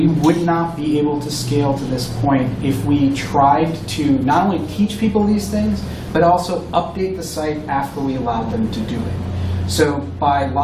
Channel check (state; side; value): identical; both; correlation 1.00